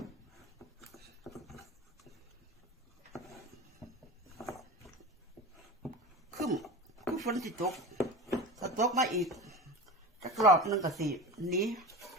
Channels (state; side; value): normal; both; correlation 0.31